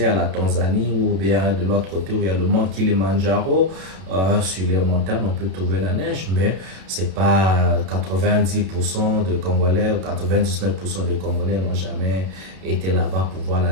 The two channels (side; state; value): left; late; 32 ms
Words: la Tanzanie, ou bien de l'autre côté où il y a le mont Kilimandjaro, sur les montagnes, on peut trouver la neige, mais c'est pas 90% de Congolais ou 99% des Congolais n'ont jamais été là-bas pour voir la